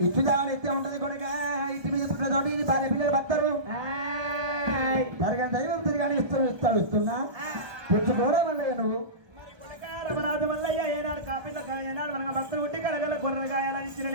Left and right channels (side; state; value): left; late; 1.2 ms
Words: ఇత్తు జాగలు ఇత్తే ఉంటది కొడుక ఇంటి మీద పుట్టుతోటి భార్య పిల్లలు బత్తరు తరగని దైవం తిరగని ఇస్తున్నా పుచ్చుకోరా మల్లయ్య నువ్వు రమణాథ మల్లయ్య ఏనాడు కాపిల్ల ఏనాడు మనకు భక్తులు ఉట్టి కలగల గొర్రెలు గాయాలని ఇచ్చిన